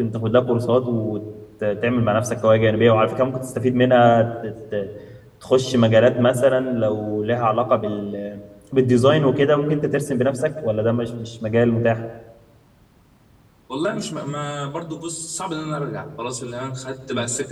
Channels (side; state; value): both; identical; correlation 1.00